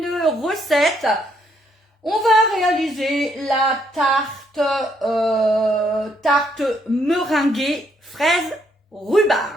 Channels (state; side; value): normal; both; correlation 0.72